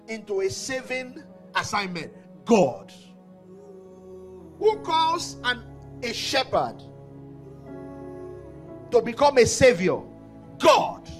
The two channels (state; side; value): identical; both; correlation 1.00